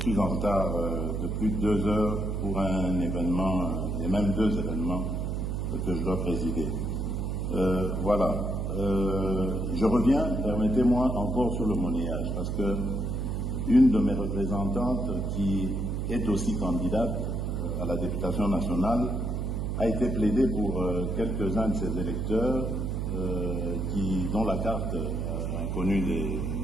en retard de plus de 2 heures pour un événement, et même 2 événements que je dois présider. Voilà. Je reviens, permettez-moi, encore sur le monnayage, parce que une de mes représentantes, qui est aussi candidate à la députation nationale, a été plaidée pour quelques-uns de ses électeurs dont la carte a connu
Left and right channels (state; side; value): noise; right; hum, 1 dB below the sound